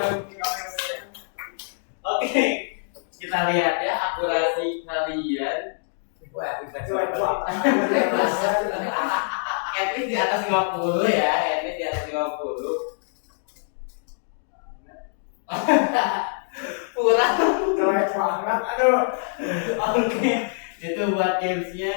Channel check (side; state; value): right; silent; digital silence